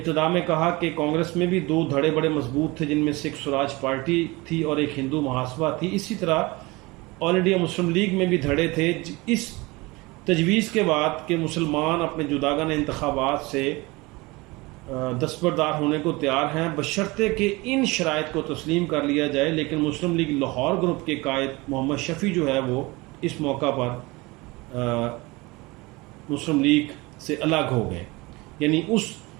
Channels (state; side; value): quieter; left; 23.4 dB